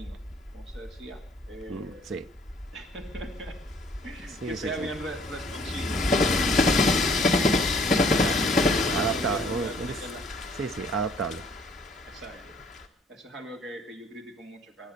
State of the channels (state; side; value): normal; both; correlation 0.59